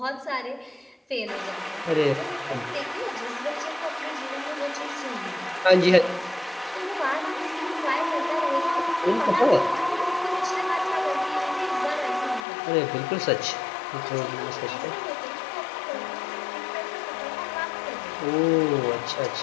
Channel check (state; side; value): drops out; right; at 12.5 s